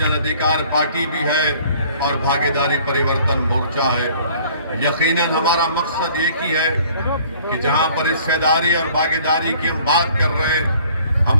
अधिकार पार्टी भी है, और भागीदारी परिवर्तन मोर्चा है। यकीनन हमारा मकसद एक ही है कि जहां पर हिस्सेदारी और भागीदारी की हम बात कर रहे हैं,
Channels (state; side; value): inverted; both; correlation -0.55